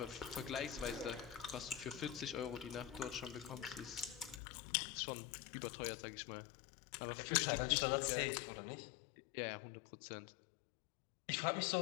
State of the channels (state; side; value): drops out; right; at 4.4 s